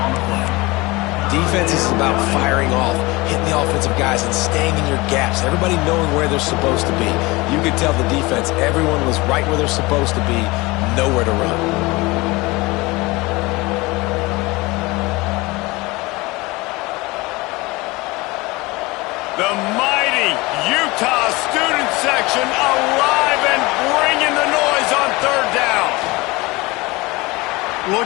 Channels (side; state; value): right; quieter; 22.9 dB